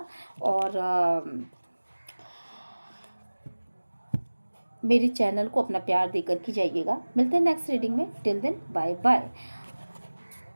और मेरे चैनल को अपना प्यार देकर के जाइएगा। मिलते हैं नेक्स्ट रीडिंग में। Till then bye bye.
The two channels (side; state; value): both; inverted; correlation -1.00